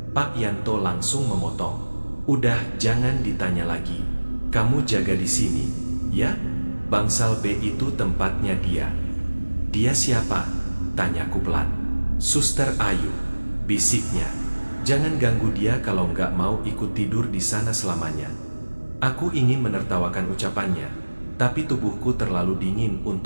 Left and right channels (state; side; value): inverted; both; correlation -1.00